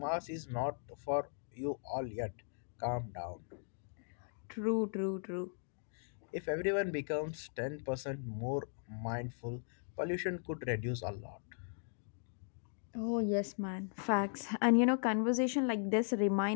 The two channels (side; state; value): right; silent; digital silence